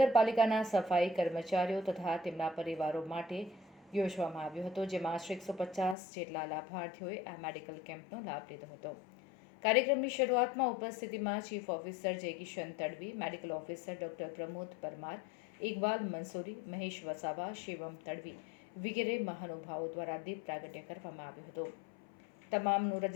સફાઈ કર્મચારીઓ તથા તેમના પરિવારો માટે યોજવામાં આવ્યો હતો, જેમાં આશરે 150 જેટલા લાભાર્થીઓએ આ મેડિકલ કેમ્પનો લાભ લીધો હતો। કાર્યક્રમની શરૂઆતમાં ઉપસ્થિતિમાં ચીફ ઓફિસર જય Kishan Tadvi, medical officer doctor Pramod Parmar, Iqbal Mansuri, Mahesh Vasava, Shivam Tadvi વગેરે મહાનુભાવો દ્વારા દીપ પ્રાગટ્ય કરવામાં આવ્યું હતું। તમામનું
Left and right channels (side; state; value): right; drops out; at 6.0 s